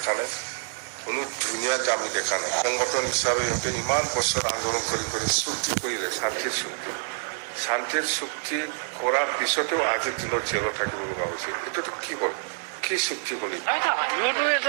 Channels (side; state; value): left; silent; digital silence